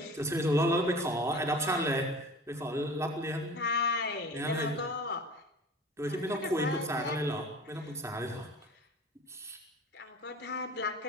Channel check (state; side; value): normal; both; correlation 0.41